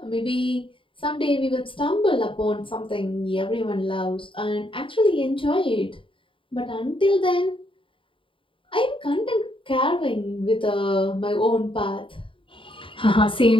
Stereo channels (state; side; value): late; right; 0.25 ms